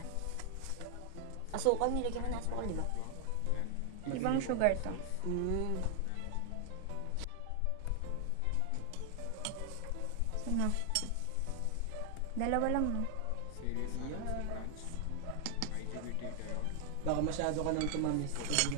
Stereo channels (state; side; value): different; both; correlation 0.00